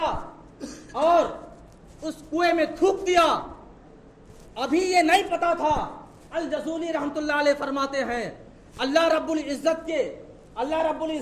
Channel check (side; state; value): both; identical; correlation 1.00